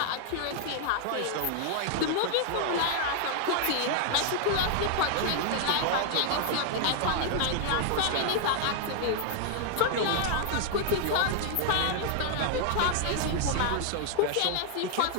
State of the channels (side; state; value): both; different; correlation 0.00